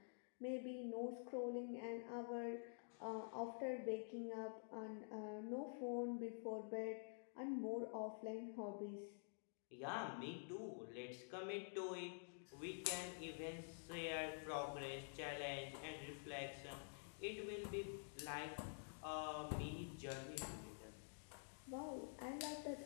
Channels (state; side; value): silent; right; digital silence